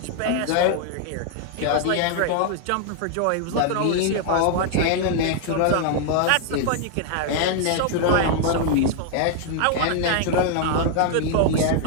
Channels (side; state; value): both; different; correlation 0.00